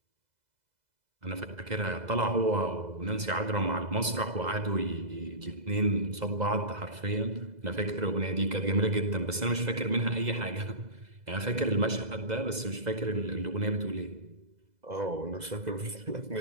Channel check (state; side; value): late; left; 2.0 ms